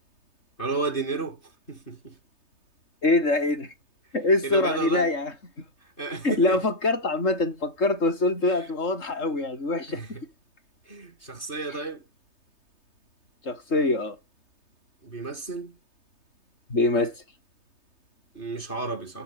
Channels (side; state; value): right; late; 3.3 ms